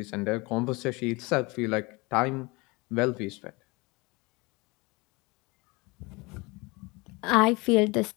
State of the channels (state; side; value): quieter; right; 25.8 dB